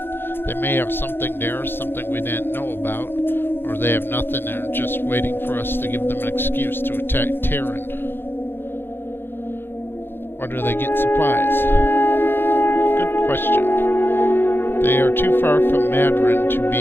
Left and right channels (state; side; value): late; right; 0.10 ms